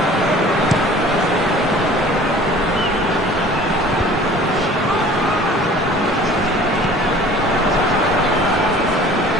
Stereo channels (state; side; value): normal; both; correlation 0.47